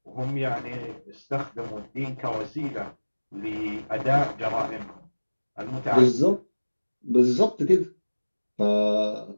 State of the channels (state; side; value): inverted; both; correlation -1.00